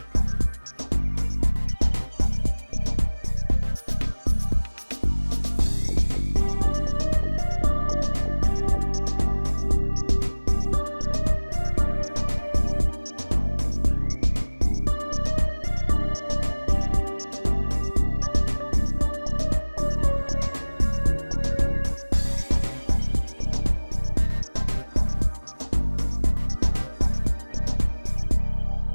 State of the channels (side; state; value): both; inverted; correlation -1.00